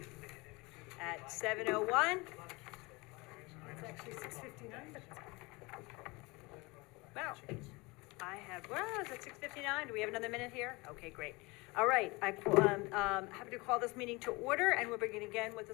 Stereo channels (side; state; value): right; quieter; 24.9 dB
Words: at 7:01. It's actually 6:59, but it's Wow. Is it 6:59? Do we have another minute here? Okay, great. All right, I'm happy to call this meeting to order, and we'll begin again with a